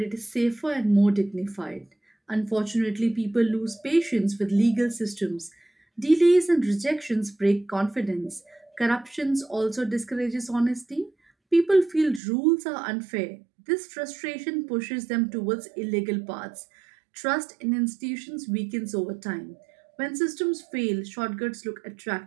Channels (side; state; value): left; drops out; at 12.2 s